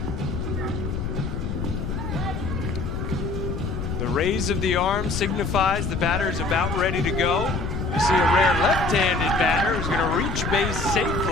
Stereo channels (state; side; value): noise; left; rumble, 3 dB below the sound